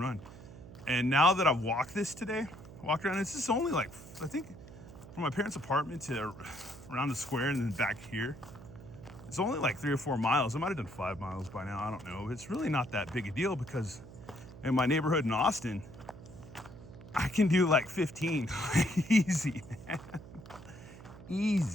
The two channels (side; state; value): right; noise; hum, 16 dB below the sound